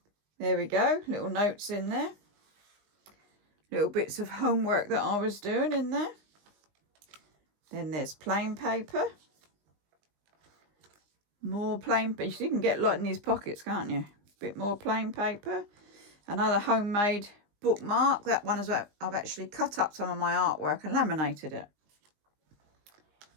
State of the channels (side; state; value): left; late; 19 ms